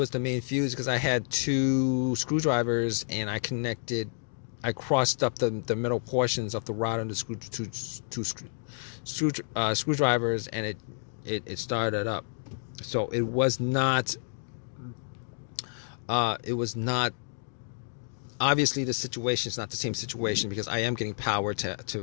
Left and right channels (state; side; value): silent; right; digital silence